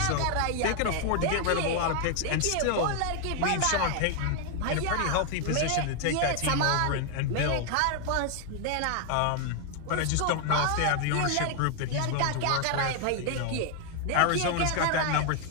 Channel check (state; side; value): different; both; correlation 0.00